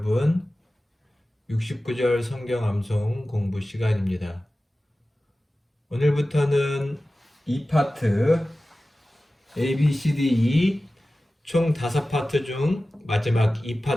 69절 성경 암송 공부 시간입니다. 오늘부터는 2파트 A, B, C, D, E 총 5파트 중 마지막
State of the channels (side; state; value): both; normal; correlation 0.96